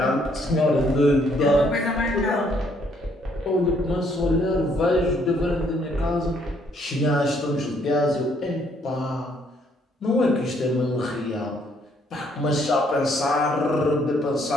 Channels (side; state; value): both; normal; correlation 0.68